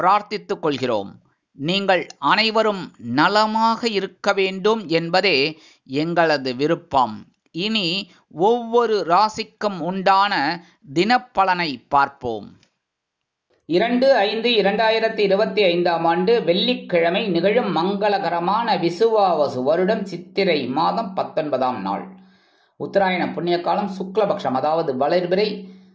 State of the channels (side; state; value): both; identical; correlation 1.00